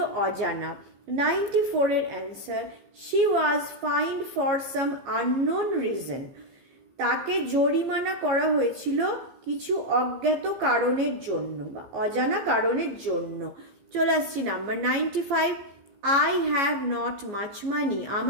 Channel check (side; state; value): left; late; 15 ms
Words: অজানা। 94-এর answer she was fined for some unknown reason. তাকে জরিমানা করা হয়েছিল কিছু অজ্ঞাত কারণের জন্য বা অজানা কারণের জন্য। চলে আসছি number 95। I have not much money.